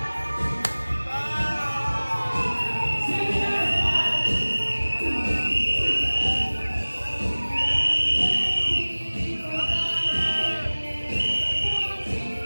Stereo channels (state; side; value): inverted; both; correlation -1.00